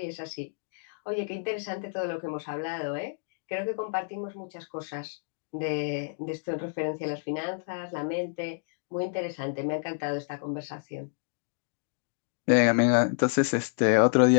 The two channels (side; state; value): right; silent; digital silence